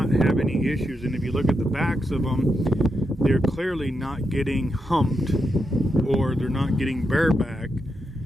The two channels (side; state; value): both; normal; correlation 0.84